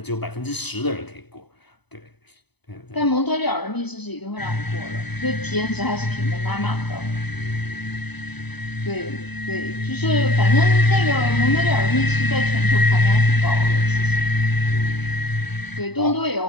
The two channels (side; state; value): right; late; 0.99 ms